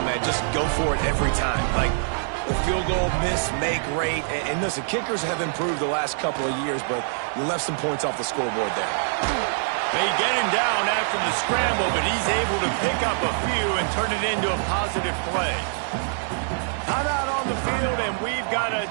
man, just go for it every time. Like, the field goal, miss, make, rate. And listen, kickers have improved the last couple of years, but you left some points off the scoreboard there. They get him down after the scramble, but he's able to pick up a few and turn it into a positive play. Time out on the field, and we've got a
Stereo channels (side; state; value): left; silent; digital silence